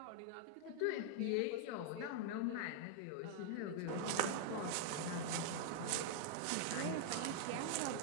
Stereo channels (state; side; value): different; both; correlation 0.00